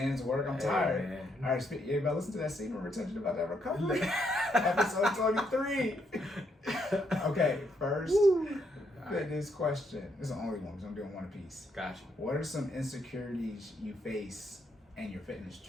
work. I'm tired. Man. All right, everybody listen to that secret retention about that recovery. Episode 23. Okay, first fitness question. This is the only one because I'm doing one apiece. Gotcha. What are some insecurities you face in your fitness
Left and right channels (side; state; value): both; normal; correlation 0.75